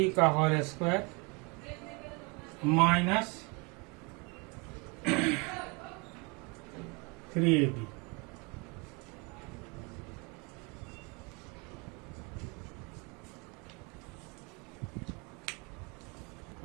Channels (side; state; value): left; quieter; 29.8 dB